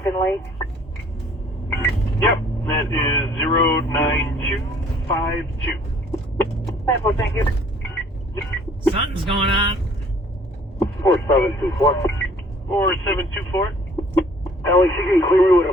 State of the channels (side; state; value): both; normal; correlation 0.56